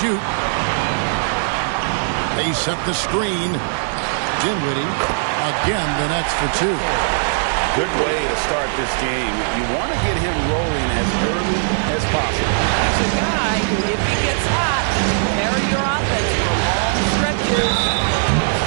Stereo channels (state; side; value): silent; left; digital silence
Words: They set the screen. Dinwiddie, again, the Nets for 2. Good way to start this game. You want to get him rolling as early as possible. He's a guy who, if he gets hot, can carry your offense for long stretches.